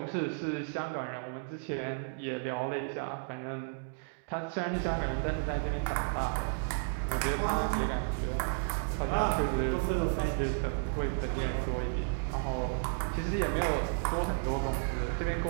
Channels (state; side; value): silent; left; digital silence